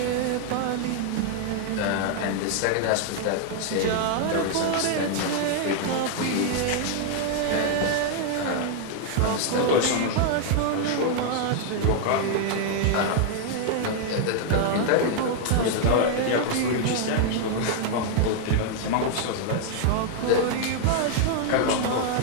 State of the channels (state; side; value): different; both; correlation 0.00